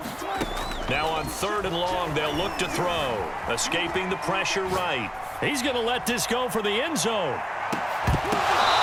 Now on 3rd and long, they'll look to throw. Escaping the pressure right. He's going to let this go for the end zone.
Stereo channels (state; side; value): identical; both; correlation 1.00